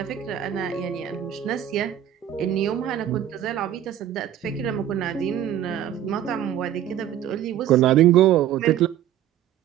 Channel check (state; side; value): quieter; left; 11.1 dB